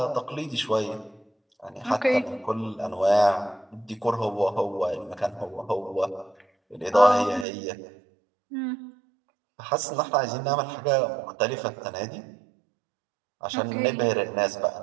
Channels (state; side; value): drops out; left; at 7.5 s